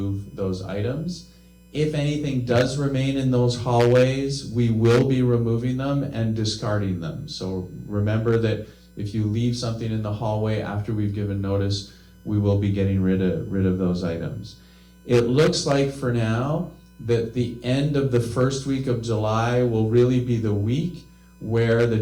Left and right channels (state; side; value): identical; both; correlation 1.00